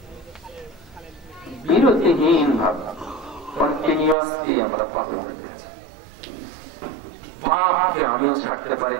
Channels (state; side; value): drops out; left; at 4.2 s